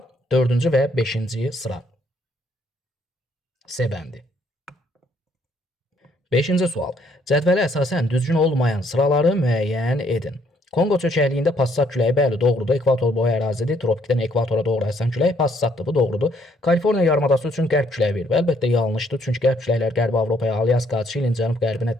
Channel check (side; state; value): both; normal; correlation 0.67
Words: 4-cü və 5-ci sıra. C bəndi. 5-ci sual. Cədvələ əsasən düzgün olmayan sıraları müəyyən edin. Kongo çökəkliyində passat küləyi bəli doğrudur. Ekvator boyu ərazidir. Tropikdən ekvatora doğru əsən külək passatdır. Bu doğrudur. Kaliforniya yarımadası üçün qərb küləyi verir. Əlbəttə yanlışdır. Çünki qərb küləklər Qərbi Avropaya, Alyaska, Çilin cənub-qərbinə